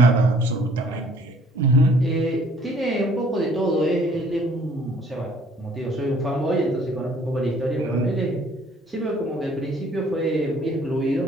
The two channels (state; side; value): normal; both; correlation 0.58